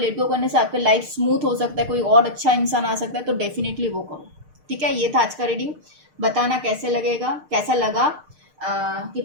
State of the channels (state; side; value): late; left; 6.6 ms